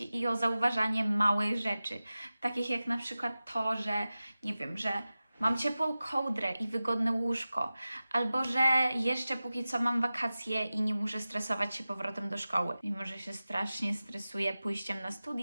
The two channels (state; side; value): inverted; both; correlation -0.96